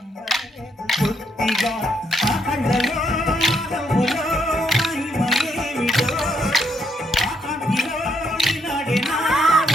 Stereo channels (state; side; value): normal; both; correlation 0.75